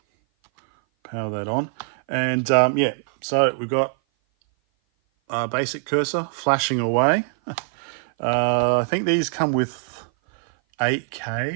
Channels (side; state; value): left; silent; 57 dB below the other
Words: Power that on, and yeah, so we've got a basic cursor flashing away. I think these come with